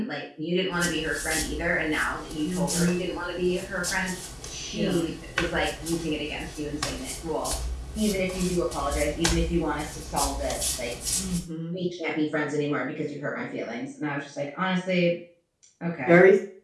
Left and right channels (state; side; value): identical; both; correlation 1.00